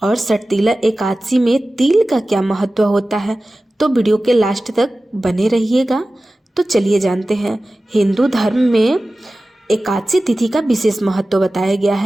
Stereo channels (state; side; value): normal; both; correlation 0.96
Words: और सटतिला एकादशी में तिल का क्या महत्व होता है। तो वीडियो के लास्ट तक बने रहिएगा। तो चलिए जानते हैं। हिंदू धर्म में एकादशी तिथि का विशेष महत्व बताया गया